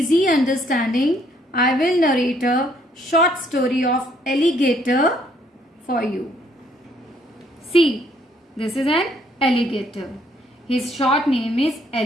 understanding, I will narrate a short story of alligator for you. See, this is an alligator. His short name is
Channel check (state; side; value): normal; both; correlation 0.67